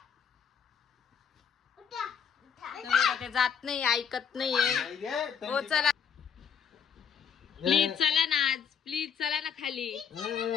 ते जात नाही, ऐकत नाहीये. हो चला प्लीज, चला ना आज, प्लीज चला ना खाली,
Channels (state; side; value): quieter; right; 7.4 dB